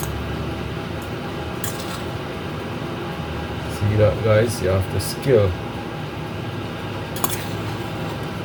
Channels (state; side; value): identical; both; correlation 1.00